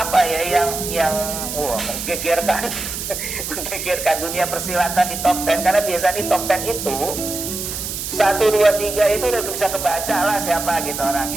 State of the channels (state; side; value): noise; right; hiss, 5 dB below the sound